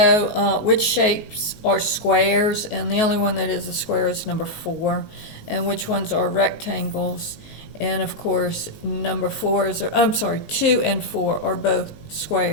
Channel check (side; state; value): right; late; 19 ms